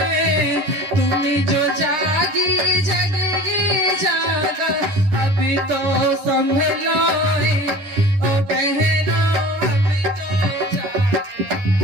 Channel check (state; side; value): late; left; 10 ms